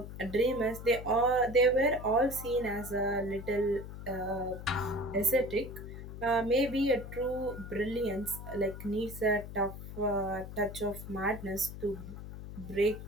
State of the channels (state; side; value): noise; left; hum, 11 dB below the sound